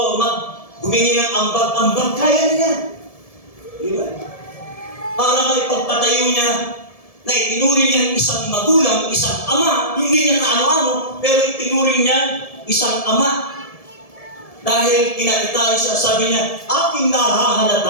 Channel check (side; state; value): right; late; 1.7 ms